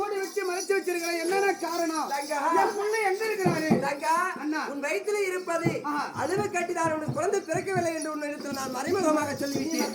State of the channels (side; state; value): both; identical; correlation 1.00